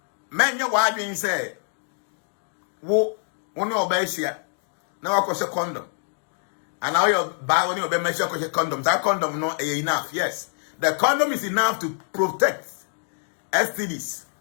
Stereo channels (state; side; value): silent; right; digital silence